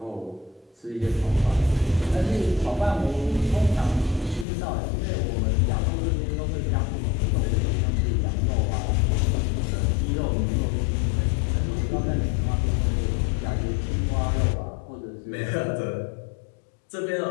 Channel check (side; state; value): right; drops out; at 4.5 s